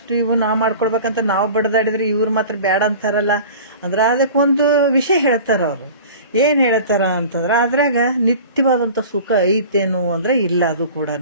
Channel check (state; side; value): inverted; both; correlation -0.40